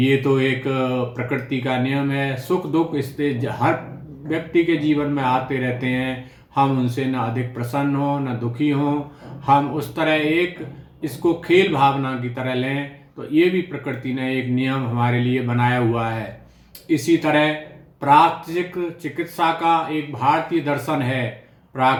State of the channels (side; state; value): both; identical; correlation 1.00